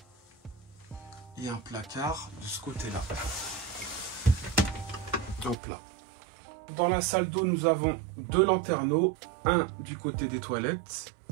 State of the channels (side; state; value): left; drops out; at 5.6 s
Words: Et un placard de ce côté-là. Hop là. Dans la salle d'eau, nous avons 2 lanterneaux. Un du côté des toilettes.